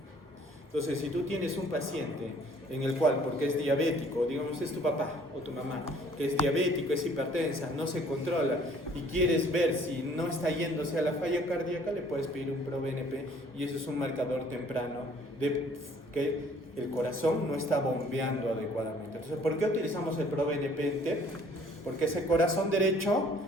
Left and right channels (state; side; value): normal; both; correlation 0.57